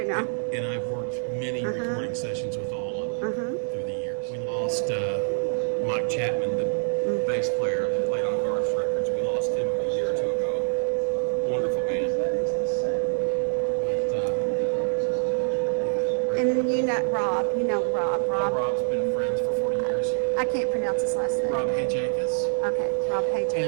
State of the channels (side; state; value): left; silent; digital silence